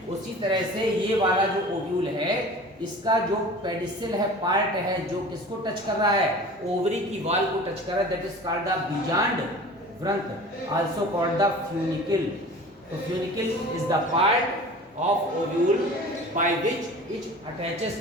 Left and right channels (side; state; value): both; normal; correlation 0.40